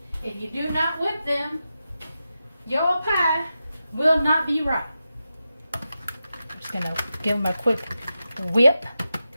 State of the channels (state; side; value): inverted; both; correlation -0.90